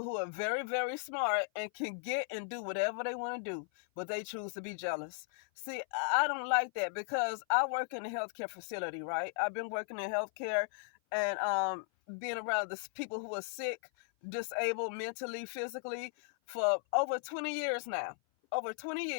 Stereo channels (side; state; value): right; silent; 54 dB below the other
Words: who are very, very smart and can get and do whatever they want to do, but they choose to be jealous. See, I don't like that, because I work in a healthcare facility, right? I've been working in healthcare and being around the people who are sick, disabled, mentally, physically, for over 20 years now. Over 20